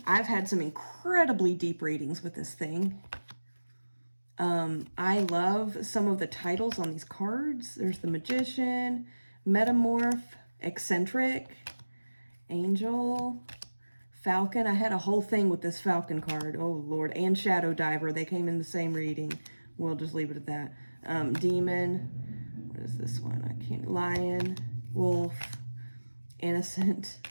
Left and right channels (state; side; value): inverted; both; correlation -1.00